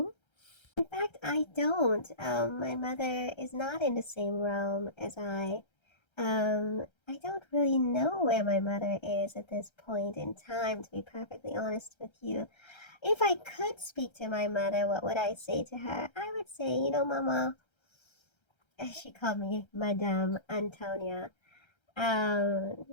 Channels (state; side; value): late; right; 1.3 ms